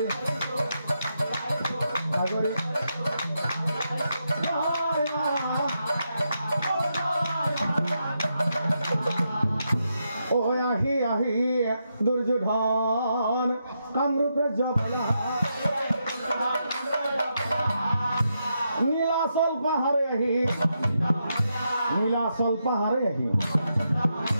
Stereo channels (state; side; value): inverted; both; correlation -0.83